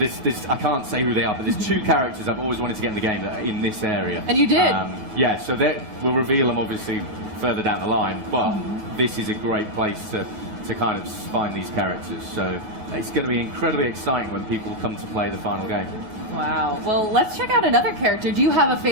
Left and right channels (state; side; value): late; left; 9.3 ms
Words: I can't say who they are, but there's 2 characters I've always wanted to get in the game that are in this area. And you did? So we'll reveal them obviously further down the line, but this is a great place to kind of find these characters. So it's going to be incredibly exciting when people come to play the final game. Wow. Well, let's check out another character. Do you have a